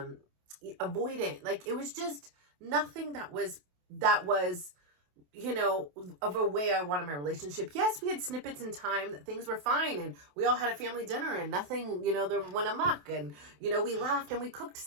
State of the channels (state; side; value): late; left; 28 ms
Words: avoidant. Like it was just nothing that was, you know, of a way I wanted my relationship. Yes, we had snippets in time that things were fine and we all had a family dinner and nothing, you know, there went amok, and, you know, we laughed and we cooked